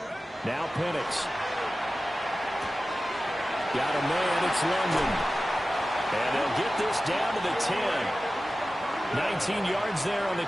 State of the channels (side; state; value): both; normal; correlation 0.95